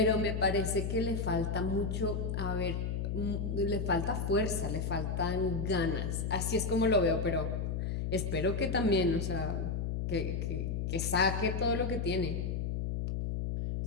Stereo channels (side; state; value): left; noise; hum, 1 dB below the sound